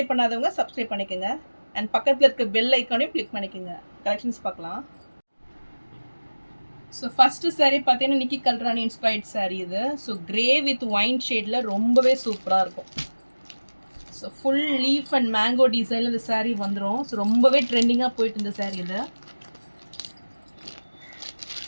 பண்ணாதவங்க சப்ஸ்கிரைப் பண்ணிக்கோங்க. அண்ட் பக்கத்தில் இருக்க பெல் ஐக்கானையும் கிளிக் பண்ணிக்கோங்க. கலெக்ஷன்ஸ் பார்க்கலாம். ஸோ ஃபஸ்ட்டு சாரீ பார்த்தீங்கன்னா நிக்கி கல்ராணி இன்ஸ்பைர்ட் சாரீ இது. ஸோ கிரே வித் ஒயின் ஷேடில் ரொம்பவே சூப்பராக இருக்கும். So full leaf and mango டிசைனில் இந்த சாரீ வந்துடும். ஸோ ரொம்பவே ட்ரெண்டிங்காக போயிட்டு இந்த சாரீ இது.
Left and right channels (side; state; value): both; inverted; correlation -1.00